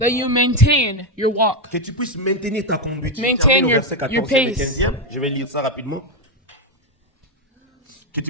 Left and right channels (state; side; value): normal; both; correlation 0.06